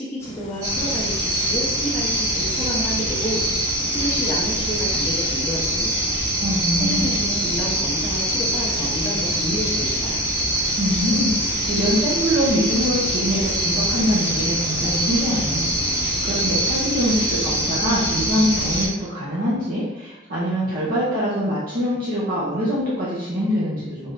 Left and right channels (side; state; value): both; normal; correlation 0.32